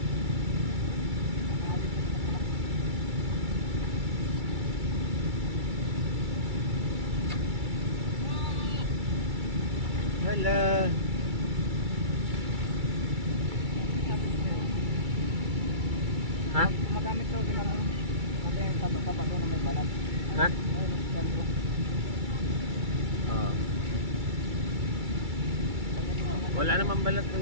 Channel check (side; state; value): left; late; 2.3 ms